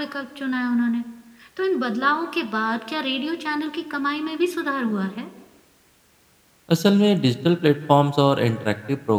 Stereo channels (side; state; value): both; identical; correlation 1.00